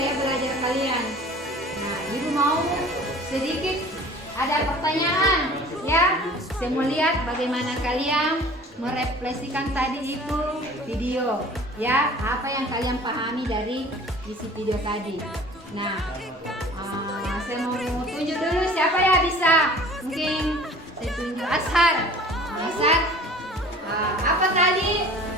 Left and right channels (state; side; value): normal; both; correlation 0.46